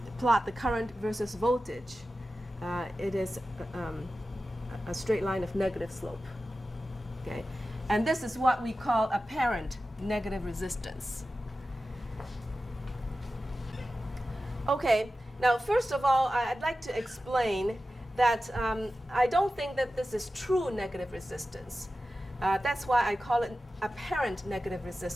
plot the current versus voltage. It is a straight line of negative slope. Okay? And this is what we call apparent negative resistance. Okay, now first of all, I'd like to explain that I don't think that this is true negative resistance. That's why I call it apparent negative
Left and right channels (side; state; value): both; normal; correlation 0.94